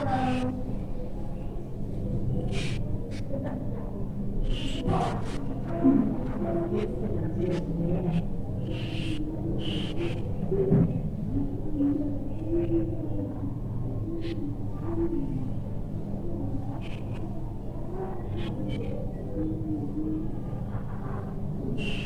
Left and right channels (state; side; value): identical; both; correlation 1.00